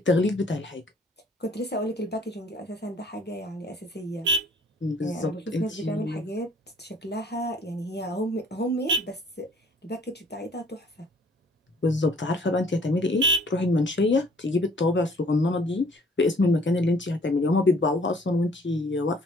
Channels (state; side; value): normal; both; correlation 0.57